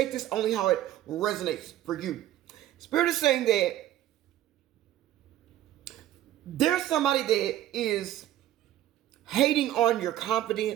this only how it resonates for you. Spirit is saying that there's somebody that is hating on your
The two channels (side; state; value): left; quieter; 13.1 dB